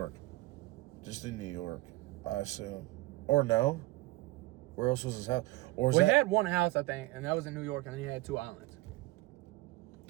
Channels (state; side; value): quieter; left; 20.0 dB